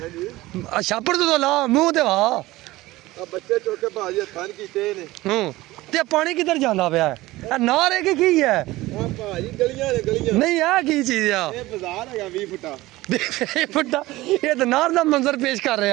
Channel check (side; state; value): left; quieter; 18.5 dB